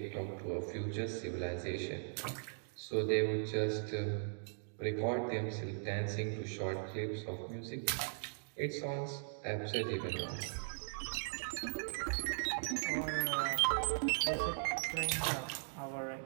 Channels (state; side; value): silent; left; digital silence